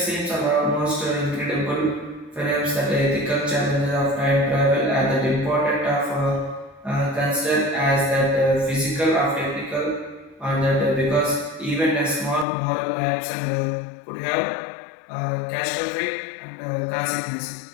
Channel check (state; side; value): drops out; right; at 12.5 s